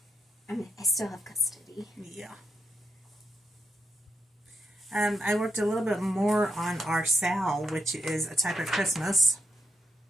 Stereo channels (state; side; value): normal; both; correlation 0.83